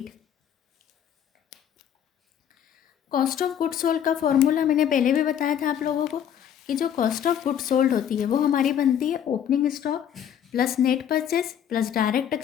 Cost of good sold का फॉर्मूला मैंने पहले भी बताया था आप लोगों को कि जो कॉस्ट ऑफ गुड सोल्ड होती है वो हमारी बनती है opening stock plus net purchase plus direct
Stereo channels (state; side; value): quieter; right; 9.4 dB